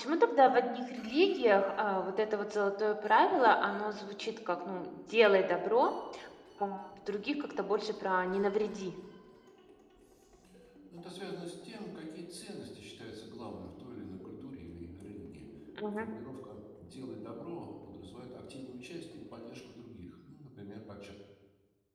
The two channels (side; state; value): both; identical; correlation 1.00